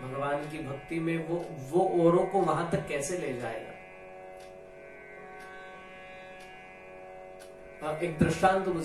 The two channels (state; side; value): identical; both; correlation 1.00